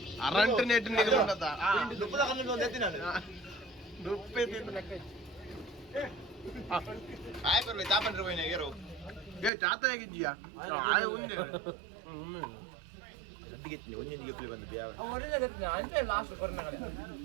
ಅರಂಟ್ ನೆಟ್ ನಿಗಲುಂಡತ ದುಪ್ಪದ ಕಣ್ಣು ಒಂದು ಎತ್ತಿನ ದುಪ್ಪೆ ತಿಂದು ಲೆಕ್ಕ ಆಯ್ ಬರ್ಲಿ ತಾಪಂಡ್ರೆ ಹೋಯ್ನ ಏರೋ ಏ ಚಾತ ಹೇಗಿದ್ದೀಯಾ ಆಯ್ ಉಂದೆ ಗಟ್ಟಿಗೆತ್ತಿನಿ ಒಂದೊಂದು ಗೆಪ್ಪಲಿ ಬಂದಿದ್ದೆ ಯಾವ ಒರಿಜಿನಲ್ ಗೆತ್ತಿನ ಅಂತೆ ಲಾಸ್ಟ್ ಕೊರೋನಾಗಡೆ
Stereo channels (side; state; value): left; drops out; at 9.5 s